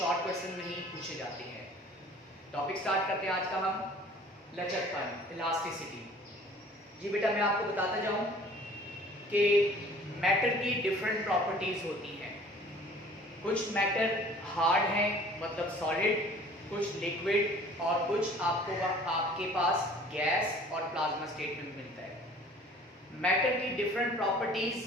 क्वेश्चन में ही पूछे जाते हैं। टॉपिक स्टार्ट करते हैं आज का हम, लचकपन, इलास्टिसिटी। जी बेटा मैं आपको बताता जाऊं कि मैटर की डिफरेंट प्रॉपर्टीज होती हैं। कुछ मैटर हार्ड हैं, मतलब सॉलिड, कुछ लिक्विड, और कुछ आपके पास गैस और प्लाज्मा स्टेट में मिलता है। मैटर की डिफरेंट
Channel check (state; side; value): normal; both; correlation 0.50